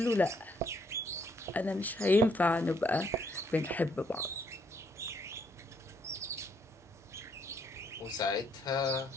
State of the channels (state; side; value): normal; both; correlation 0.70